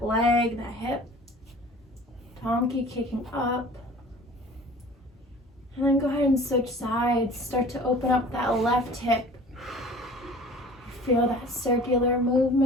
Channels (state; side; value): normal; both; correlation 0.45